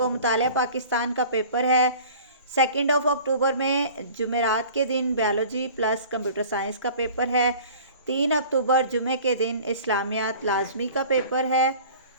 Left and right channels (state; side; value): inverted; both; correlation -0.44